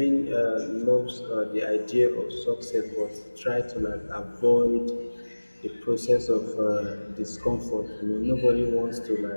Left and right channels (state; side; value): inverted; both; correlation -1.00